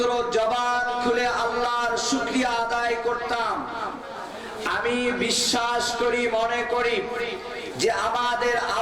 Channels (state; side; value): identical; both; correlation 1.00